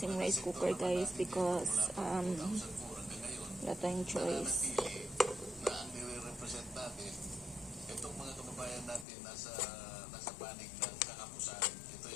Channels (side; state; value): right; drops out; at 9.1 s